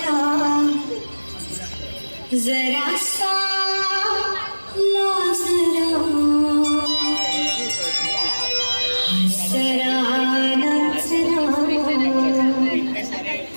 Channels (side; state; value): both; inverted; correlation -1.00